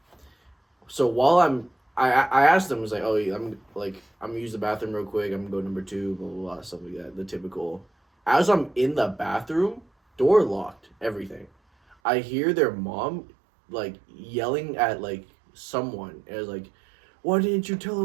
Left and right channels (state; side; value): drops out; left; at 12.0 s